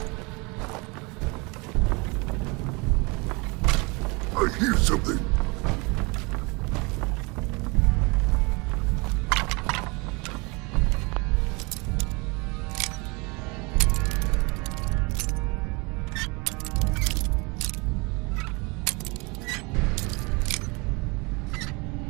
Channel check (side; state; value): left; quieter; 28.0 dB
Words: I hear something.